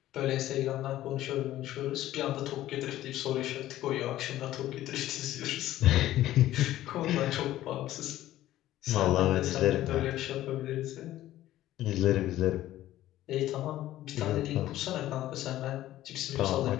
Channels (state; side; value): quieter; right; 14.3 dB